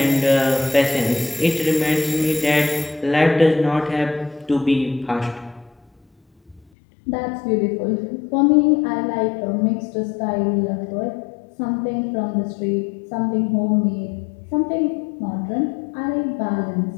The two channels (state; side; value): drops out; right; at 6.7 s